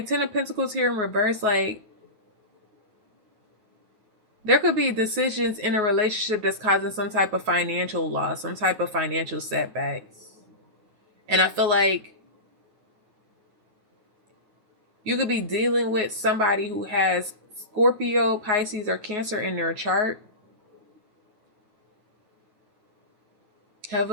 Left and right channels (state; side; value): late; left; 9.4 ms